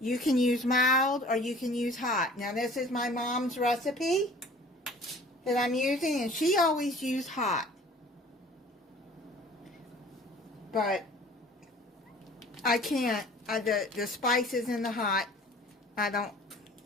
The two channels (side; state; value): both; normal; correlation 0.48